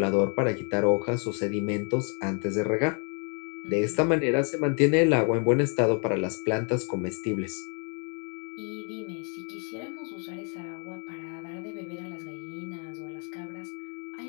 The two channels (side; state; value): right; quieter; 39.1 dB